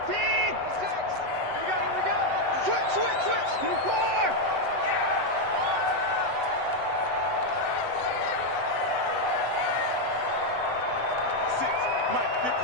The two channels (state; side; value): late; left; 7.9 ms